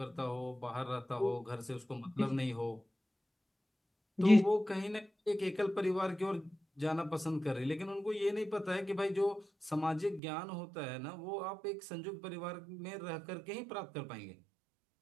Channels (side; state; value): left; drops out; at 10.2 s